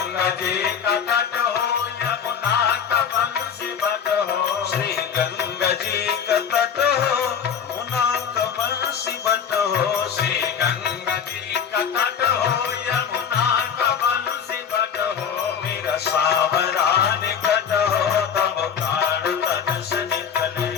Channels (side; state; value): right; quieter; 7.7 dB